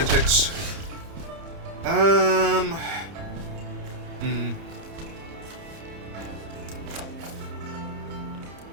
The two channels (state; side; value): late; left; 30 ms